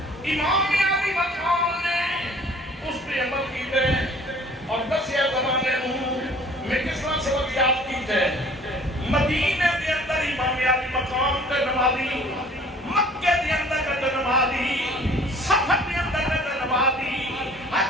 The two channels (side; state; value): both; normal; correlation 0.51